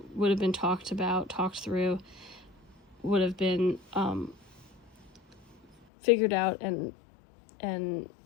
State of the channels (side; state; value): right; drops out; at 5.9 s